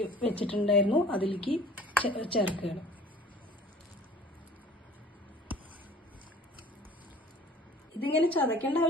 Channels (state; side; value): normal; both; correlation 0.48